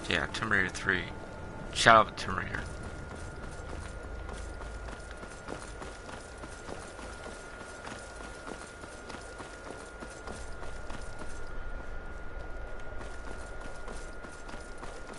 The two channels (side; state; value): both; identical; correlation 1.00